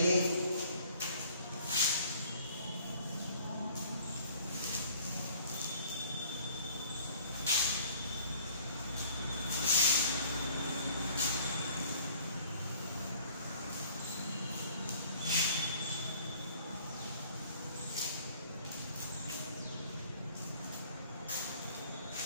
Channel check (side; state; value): both; inverted; correlation -0.55